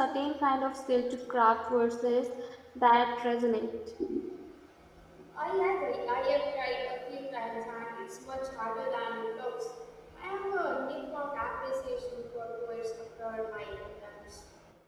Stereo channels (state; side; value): identical; both; correlation 1.00